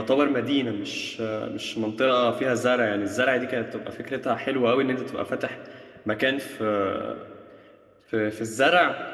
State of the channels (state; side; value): identical; both; correlation 1.00